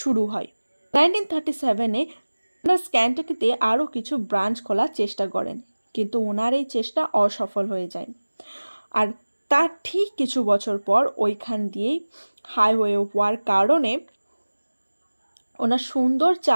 হয়। 1937-এ ক্যান্টাকিতে আরও কিছু ব্রাঞ্চ খোলার চেষ্টা করেন, কিন্তু ওনার এই চেষ্টা অসফল হয়ে যায়। আর তার ঠিক কিছু বছর পর ওইখান দিয়েই হাইওয়ে হওয়ার কারণে ওনার সুন্দর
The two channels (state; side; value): inverted; both; correlation -1.00